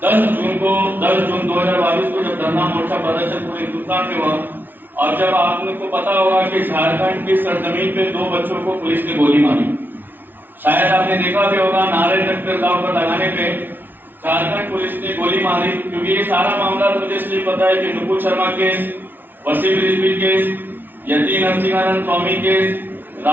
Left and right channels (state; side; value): late; left; 0.093 ms